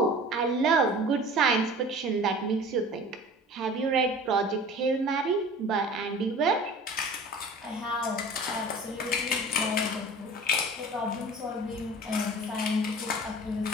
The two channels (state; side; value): normal; both; correlation 0.41